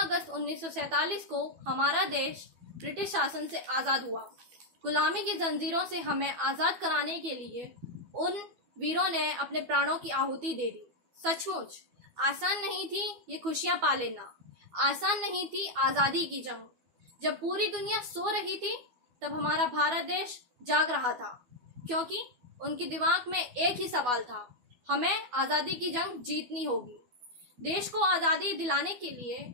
1947 को हमारा देश ब्रिटिश शासन से आजाद हुआ। गुलामी की जंजीरों से हमें आजाद कराने के लिए उन वीरों ने अपने प्राणों की आहुति दे दी। सचमुच आसान नहीं थी ये खुशियां पा लेना, आसान नहीं थी आजादी की जंग। जब पूरी दुनिया सो रही थी तब हमारा भारत देश जाग रहा था, क्योंकि उनके दिमाग में एक ही सवाल था, हमें आजादी की जंग जीतनी होगी। देश को आजादी दिलाने के लिए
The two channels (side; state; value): left; late; 12 ms